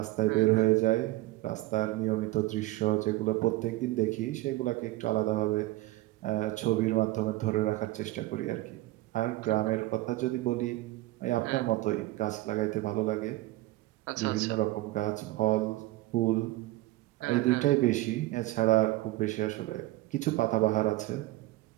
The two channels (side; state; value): left; quieter; 17.9 dB